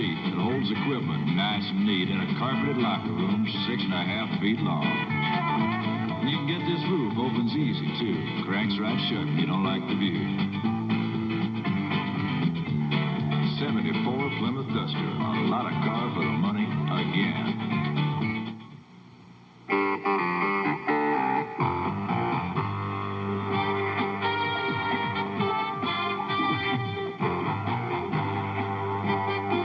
that holds equipment nice and neat in a carpeted locker room 6.5 feet long. And you can get this roof opens easy, too. Cranks right shut if you don't like the view. 74 Plymouth Duster. A lot of car for the money again.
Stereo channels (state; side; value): identical; both; correlation 1.00